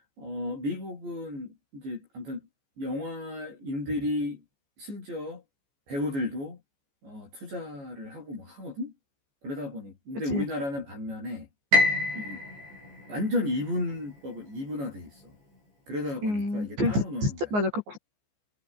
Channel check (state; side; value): late; left; 14 ms